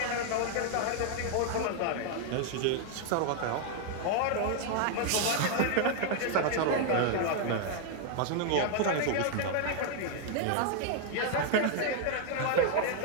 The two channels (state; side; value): different; both; correlation 0.00